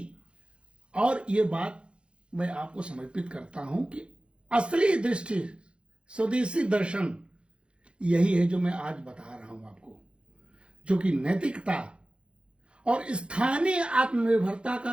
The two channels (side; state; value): left; late; 0.057 ms